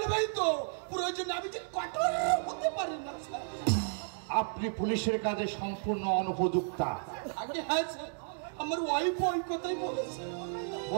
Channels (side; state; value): left; silent; digital silence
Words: তো, প্রয়োজনে আমি যে কঠোর হতে পারি না স্যার। আপনি পুলিশের কাজে সম্পূর্ণ অনুপযুক্তা। আগে হ্যাঁ স্যার, আমার ওয়াইফও ওই কথাই বলেছে।